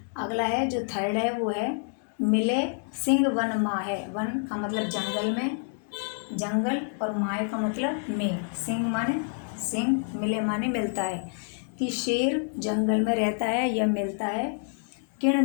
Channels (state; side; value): silent; right; 60 dB below the other